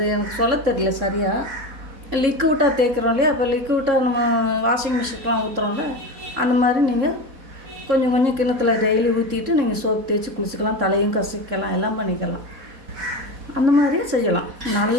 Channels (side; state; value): left; late; 3.7 ms